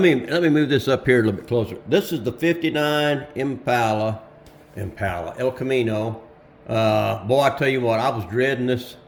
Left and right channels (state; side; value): identical; both; correlation 1.00